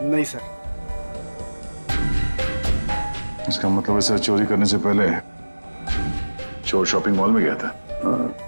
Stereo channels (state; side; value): inverted; both; correlation -1.00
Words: नहीं सर। इसका मतलब ऐसा चोरी करने से पहले चोर शॉपिंग मॉल में गया था।